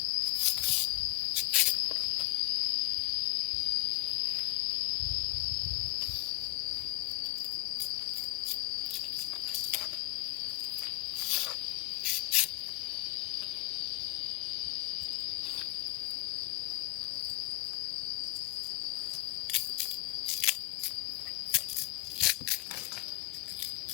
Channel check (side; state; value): right; quieter; 22.9 dB